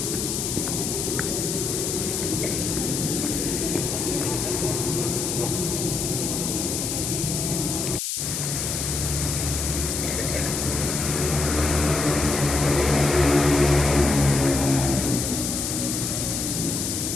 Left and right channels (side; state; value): left; noise; hiss, 2 dB below the sound